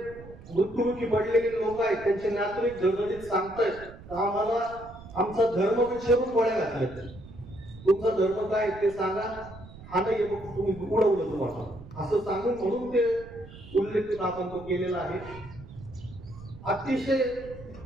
मृत्युमुखी पडलेले लोक आहेत त्यांचे नातेवाईक झळझळीत सांगतायत आम्हाला आमचा धर्म विचारून गोळ्या घातल्या. तुमचा धर्म काय ते सांगा, हा नाही मग तुम्ही उडवलं तुम्हाला असं सांगून म्हणून ते उल्लेख आपण तो केलेला आहे. अतिशय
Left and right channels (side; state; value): right; noise; rumble, 17 dB below the sound